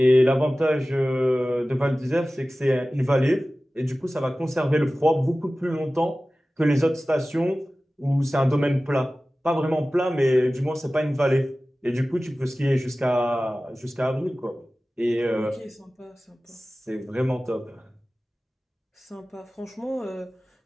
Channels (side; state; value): both; normal; correlation 0.96